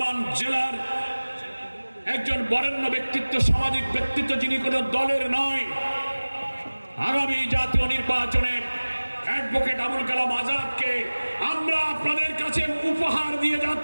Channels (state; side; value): inverted; both; correlation -1.00